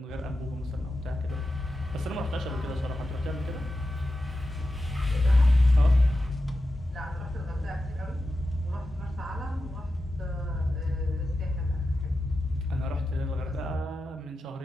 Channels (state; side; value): normal; both; correlation 0.91